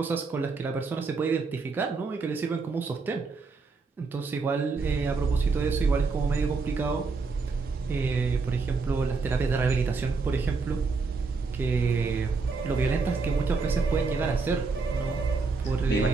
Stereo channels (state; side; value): quieter; left; 4.4 dB